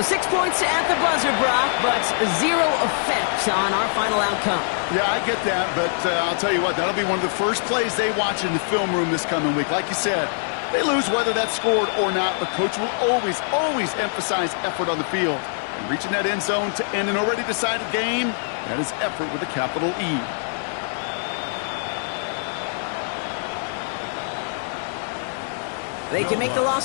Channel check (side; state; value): right; silent; 63 dB below the other